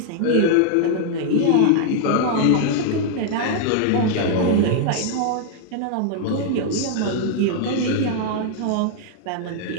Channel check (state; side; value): different; both; correlation 0.00